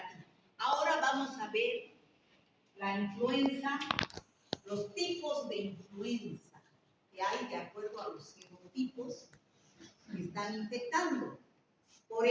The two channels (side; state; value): both; identical; correlation 1.00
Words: Ahora vamos a ver la influenza, los tipos de influenza que hay de acuerdo a los serotipos que están infectando. Por